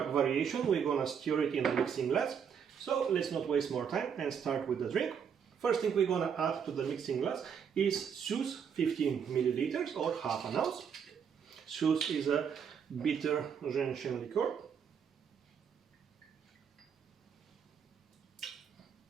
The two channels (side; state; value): left; quieter; 7.3 dB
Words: variation, we're gonna stir it in a mixing glass. So let's not waste more time and start with the drink. First thing we're gonna add to the mixing glass is Suze 15 milliliters or half an ounce. Suze is a bitter gentian liqueur.